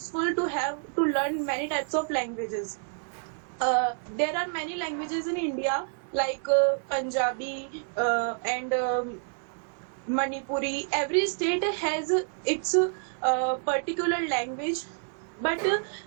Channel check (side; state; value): left; silent; digital silence